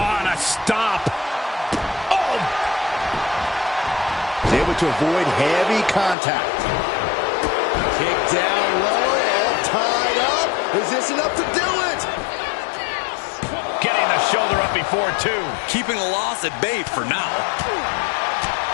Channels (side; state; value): right; drops out; at 6.2 s